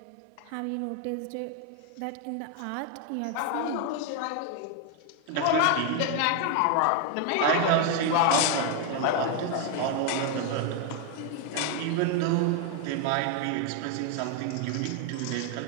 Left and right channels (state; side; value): different; both; correlation 0.01